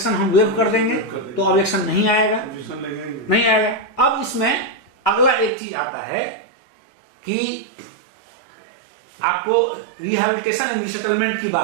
हम वेव कर देंगे, तो ऑब्जेक्शन नहीं आएगा, नहीं आएगा। अब इसमें अगला एक चीज आता है कि आपको रिहेबिलिटेशन एंड रिसेटलमेंट की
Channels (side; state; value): left; drops out; at 5.5 s